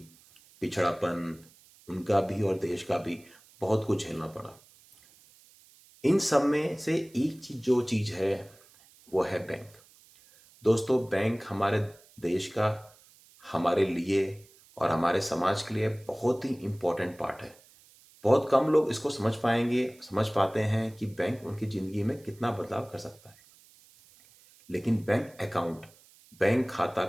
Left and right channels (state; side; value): noise; right; hiss, 27 dB below the sound